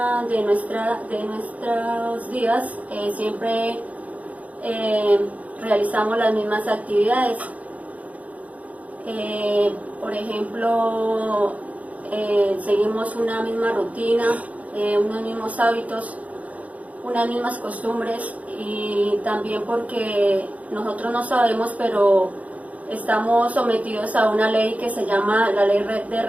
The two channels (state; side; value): late; left; 0.070 ms